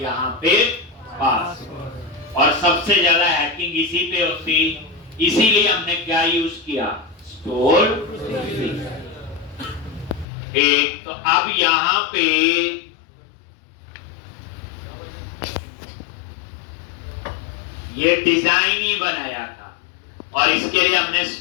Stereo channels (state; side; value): drops out; right; at 10.2 s